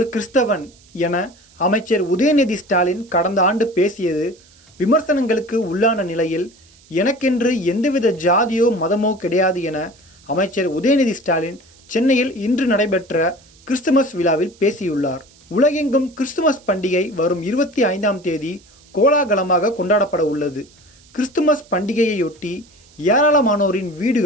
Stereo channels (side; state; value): right; noise; hiss, 28 dB below the sound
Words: கிறிஸ்தவன் என அமைச்சர் உதயநிதி ஸ்டாலின் கடந்த ஆண்டு பேசியது விமர்சனங்களுக்கு உள்ளான நிலையில் எனக்கென்று எந்தவித ஜாதியோ மதமோ கிடையாது என அமைச்சர் உதயநிதி ஸ்டாலின் சென்னையில் இன்று நடைபெற்ற கிறிஸ்துமஸ் விழாவில் பேசியுள்ளார். உலகெங்கும் கிறிஸ்துமஸ் பண்டிகை வரும் 25ஆம் தேதி கோலாகலமாக கொண்டாடப்பட உள்ளது. கிறிஸ்துமஸ் பண்டிகையையொட்டி ஏராளமானோரின்